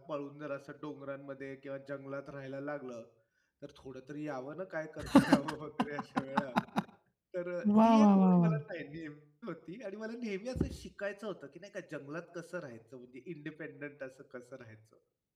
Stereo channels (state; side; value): identical; both; correlation 1.00